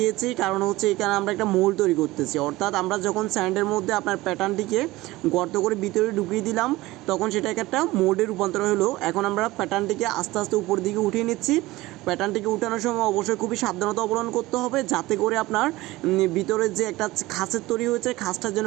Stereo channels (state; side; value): quieter; left; 19.0 dB